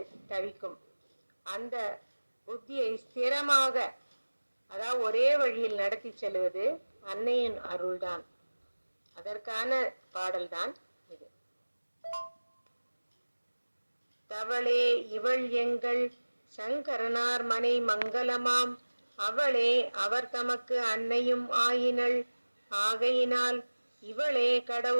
தவிக்கும். அந்த புத்தியை ஸ்திரமாக, அதாவது ஒரே வழியில் நடத்தி செல்வது அன்னையின் அருள்தான். அதற்கான பாடல்தான் இது. தவளே இவள் எங்கள் சங்கரனார் மனை மங்களமாம், அவளே அவர் தமக்கு அன்னையும் ஆயினள். ஆகையினால் இவளே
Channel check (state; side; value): inverted; both; correlation -1.00